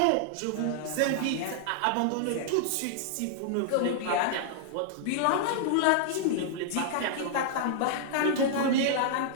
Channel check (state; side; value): different; both; correlation -0.01